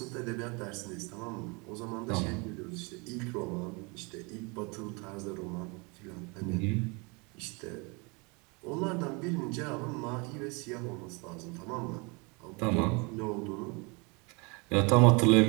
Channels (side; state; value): left; quieter; 29.7 dB